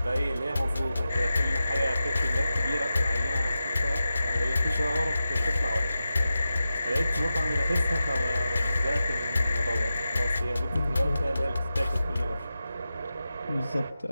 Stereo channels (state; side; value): inverted; both; correlation -0.92